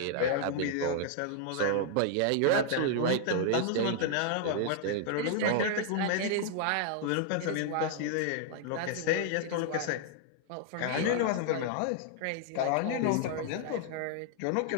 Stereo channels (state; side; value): different; both; correlation -0.01